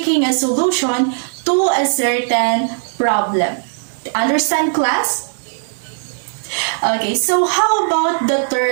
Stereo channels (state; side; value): silent; left; 61 dB below the other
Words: a solution to a certain problem. Understand, class? Okay, so how about the